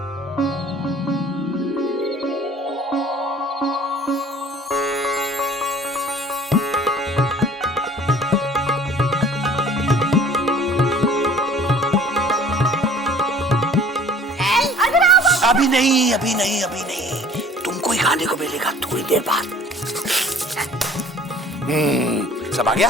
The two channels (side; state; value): both; normal; correlation 0.51